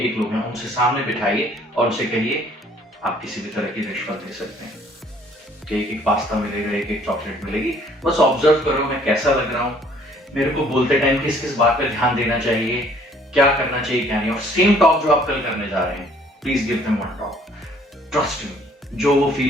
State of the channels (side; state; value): both; normal; correlation 0.59